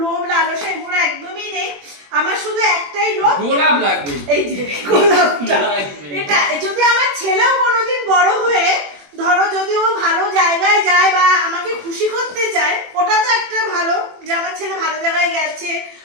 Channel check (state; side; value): late; left; 21 ms